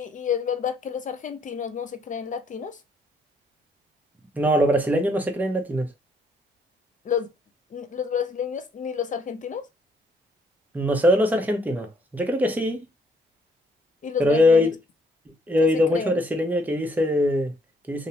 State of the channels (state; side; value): normal; both; correlation 0.68